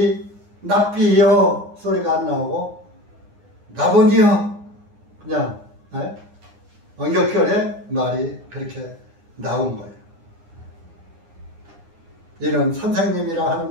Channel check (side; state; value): left; late; 9.7 ms